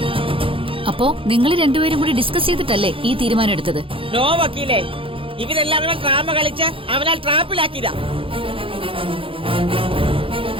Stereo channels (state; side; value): late; left; 0.26 ms